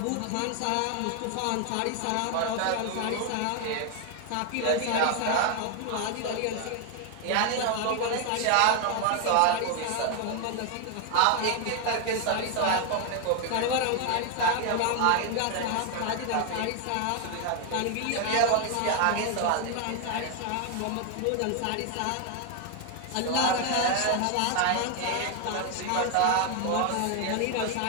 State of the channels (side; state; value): both; different; correlation 0.01